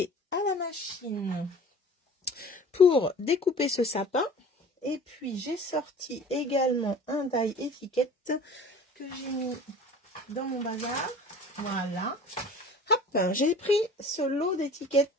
à la machine pour découper ce sapin. Et puis, j'ai sorti également un die étiquette que j'ai mis dans mon bazar. Voilà. Hop, j'ai pris ce lot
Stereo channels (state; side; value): normal; both; correlation 0.43